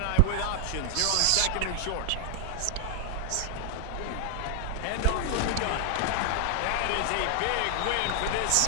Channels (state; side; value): different; both; correlation 0.00